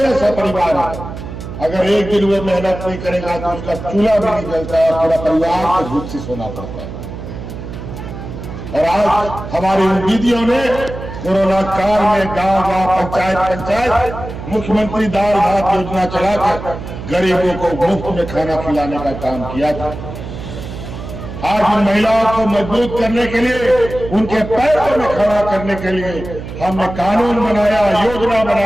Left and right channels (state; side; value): noise; right; hum, 10 dB below the sound